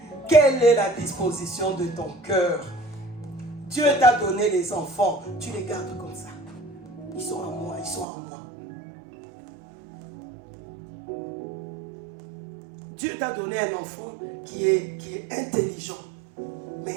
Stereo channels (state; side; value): drops out; left; at 8.1 s